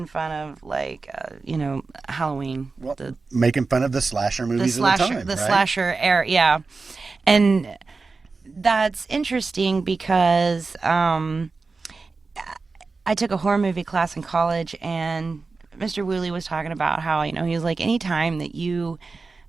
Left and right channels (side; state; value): left; quieter; 4.1 dB